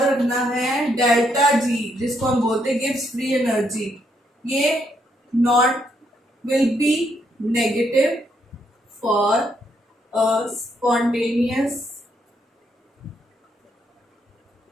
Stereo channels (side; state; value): both; normal; correlation 0.75